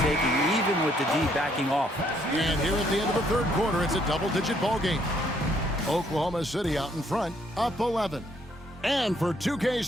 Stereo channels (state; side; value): normal; both; correlation 0.68